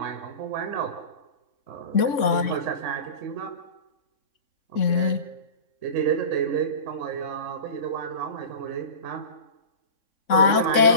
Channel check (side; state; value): right; late; 3.6 ms